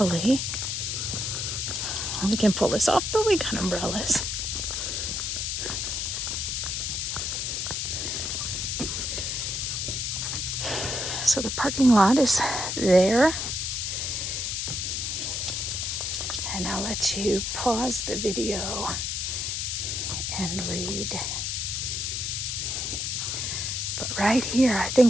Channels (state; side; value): noise; left; hiss, 1 dB below the sound